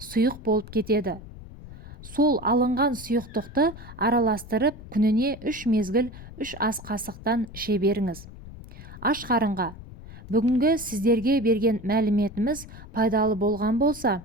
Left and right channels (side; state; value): left; noise; rumble, 15 dB below the sound